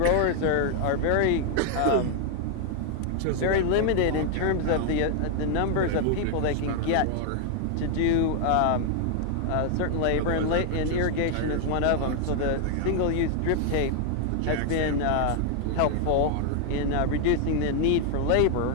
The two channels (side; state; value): both; different; correlation 0.00